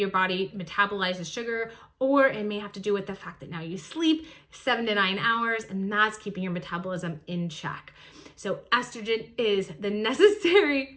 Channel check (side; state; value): both; identical; correlation 1.00